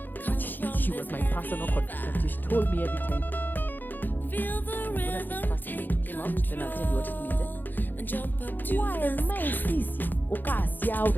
but she was my personal contraceptive. She told me every time. And I'm going to say it first the way it came out, then I'll tell you what it means. Why am I sisia?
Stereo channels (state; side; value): late; right; 0.088 ms